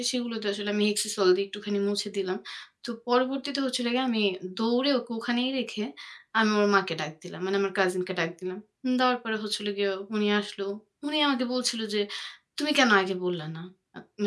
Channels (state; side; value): identical; both; correlation 1.00